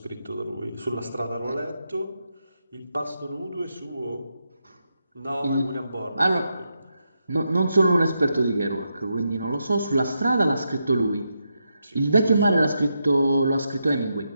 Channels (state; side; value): inverted; both; correlation -0.85